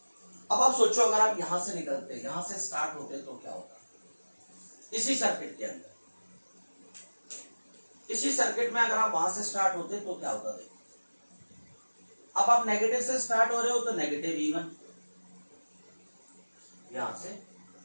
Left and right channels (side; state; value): both; inverted; correlation -1.00